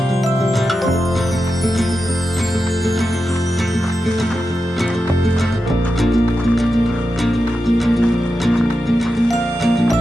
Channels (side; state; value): both; normal; correlation 0.90